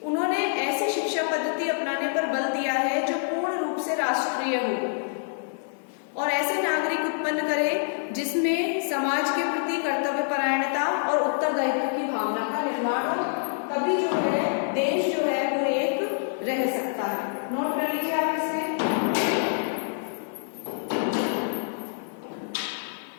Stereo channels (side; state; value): right; silent; digital silence